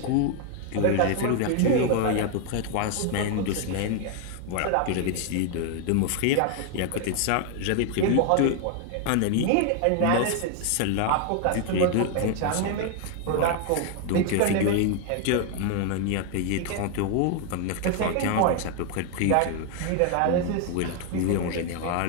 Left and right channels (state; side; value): different; both; correlation 0.00